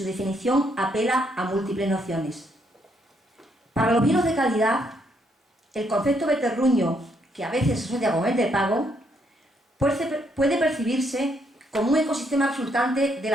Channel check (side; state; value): both; normal; correlation 0.73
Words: definición apela a múltiples nociones. Para los vinos de calidad, el concepto de terruño, que a veces se asocia con el de pago, puede percibirse como un ecosistema resultante de